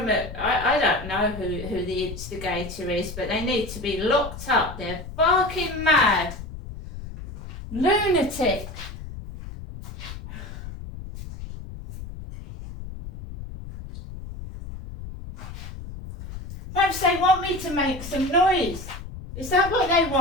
I don't know who the instigator is, but they need to be locked up. They're barking mad. Lunatic. Perhaps they want me to make some noise. Is that what they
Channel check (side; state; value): left; noise; rumble, 11 dB below the sound